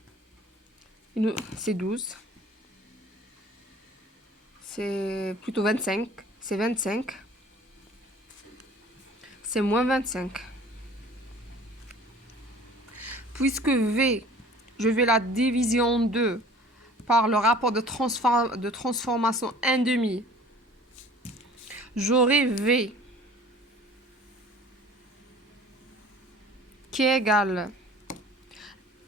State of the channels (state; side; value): normal; both; correlation 0.48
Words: C'est 12. C'est plutôt 25. C'est 25. C'est moins 25. Puisque V, je vais la diviser en deux par le rapport de transformation 1 demi, j'aurai V qui est égal